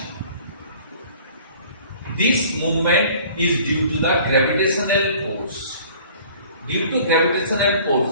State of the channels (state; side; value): inverted; both; correlation -0.51